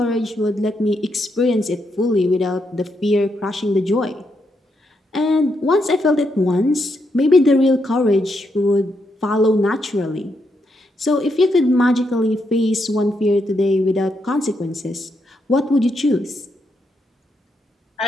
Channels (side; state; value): both; normal; correlation 0.80